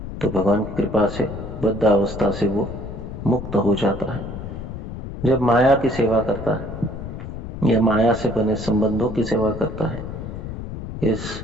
तो भगवान की कृपा से बद्ध अवस्था से वो मुक्त हो जाता है। जब माया की सेवा करता है या माया से बने संबंधों की सेवा करता है, इस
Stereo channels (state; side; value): noise; left; rumble, 9 dB below the sound